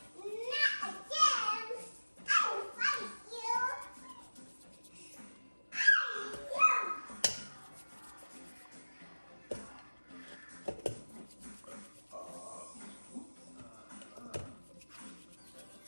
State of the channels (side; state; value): both; inverted; correlation -1.00